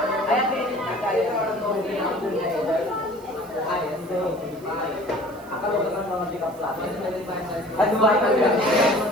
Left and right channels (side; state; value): right; noise; hiss, 25 dB below the sound